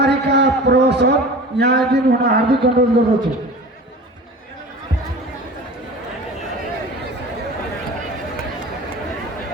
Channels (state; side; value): normal; both; correlation 0.38